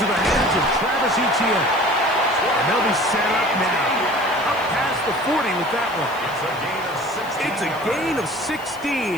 the hands of Travis Etienne. And they'll be set up now. Up past the 40 with that one. It's a gain of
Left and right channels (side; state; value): left; noise; hiss, 22 dB below the sound